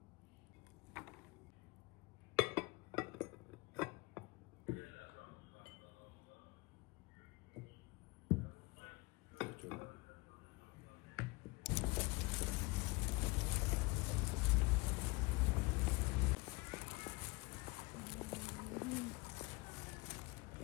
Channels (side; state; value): right; quieter; 24.6 dB